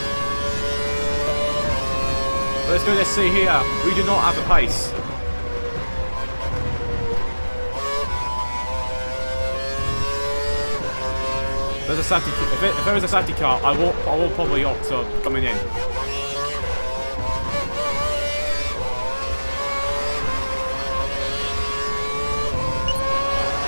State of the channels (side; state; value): both; inverted; correlation -1.00